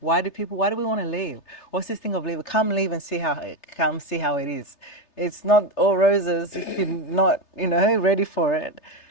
do we want to leave? What's this thing of leave? Come leave and see how it is. It's not all roses if you're not, you know, ready for it.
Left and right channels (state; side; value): late; right; 3.3 ms